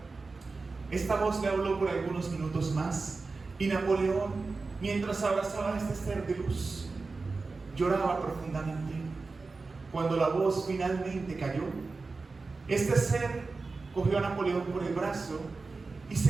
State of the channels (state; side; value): quieter; left; 4.0 dB